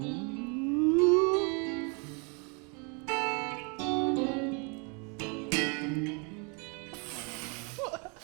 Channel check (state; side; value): quieter; left; 34.2 dB